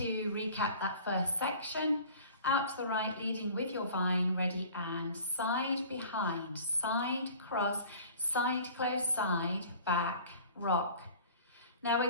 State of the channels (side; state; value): both; inverted; correlation -0.45